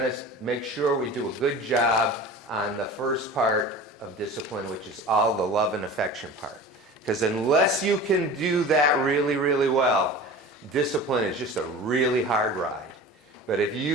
to make sure we do a good job on the first part of discipline, which is all the love and affection part. Because unless you can do that really, really well, discipline is just a really hard ride. But if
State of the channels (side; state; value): both; normal; correlation 0.37